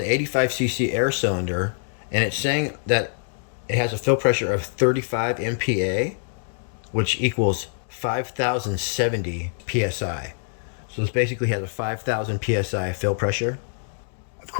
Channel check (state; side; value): silent; right; digital silence